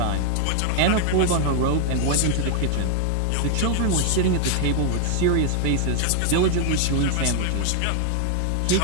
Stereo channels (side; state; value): both; different; correlation 0.00